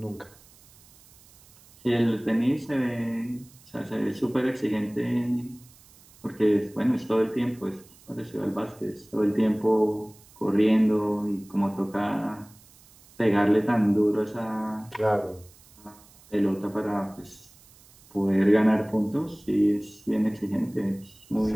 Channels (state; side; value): noise; right; hiss, 26 dB below the sound